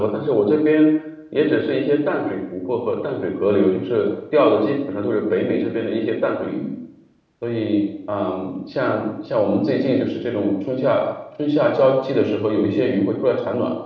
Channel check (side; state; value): both; identical; correlation 1.00